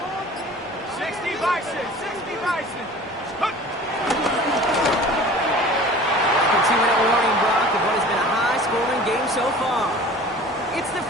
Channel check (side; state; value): both; normal; correlation 0.43